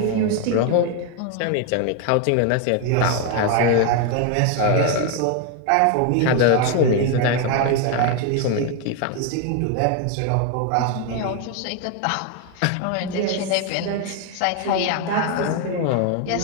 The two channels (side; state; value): both; different; correlation 0.01